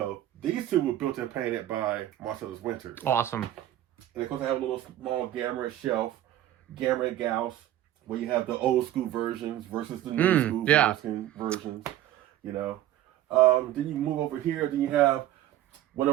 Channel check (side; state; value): left; quieter; 13.2 dB